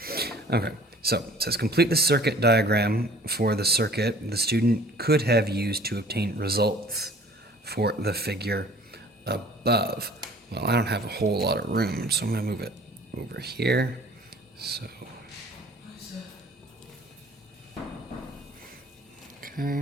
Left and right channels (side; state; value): both; normal; correlation 0.51